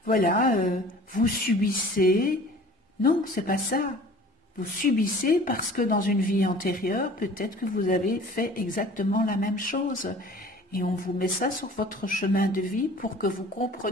vous subissez. » Non, c'est pas ça. Vous subissez parce que dans une vie antérieure, peut-être que vous avez fait exactement la même chose. Et on vous met ça sur votre chemin de vie pour que vous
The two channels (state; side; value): normal; both; correlation 0.46